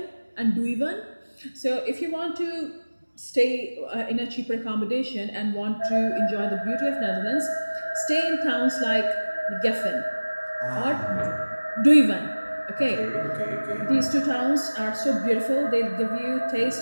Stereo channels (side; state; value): both; inverted; correlation -1.00